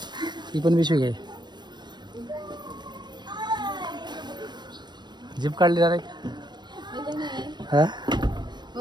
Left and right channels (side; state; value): left; late; 0.21 ms